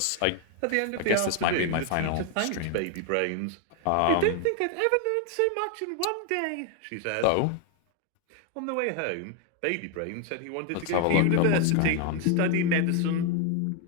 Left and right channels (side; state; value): both; different; correlation 0.01